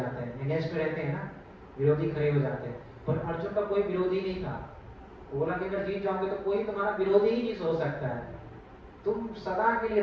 हैं, अगेंस्ट में रहते हैं ना, विरोधी खड़े हो जाते हैं। पर अर्जुन का कोई विरोधी नहीं था। बोला कि अगर जीत जाओगे तो कोई तुम्हारा विरोधी ही नहीं सोच सकता है, तुम सदा के लिए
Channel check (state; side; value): identical; both; correlation 1.00